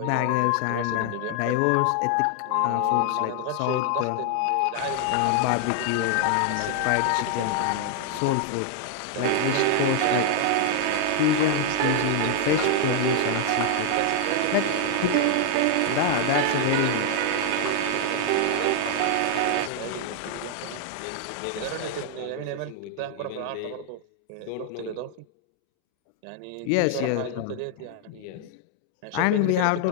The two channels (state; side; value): different; both; correlation 0.00